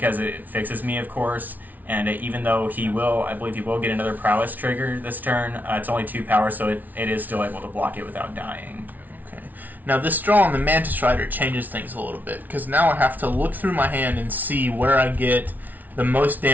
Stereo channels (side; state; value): left; late; 0.080 ms